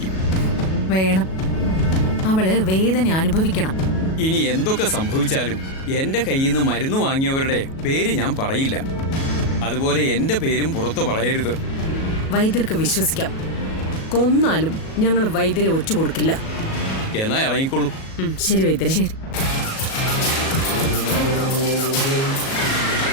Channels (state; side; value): late; right; 37 ms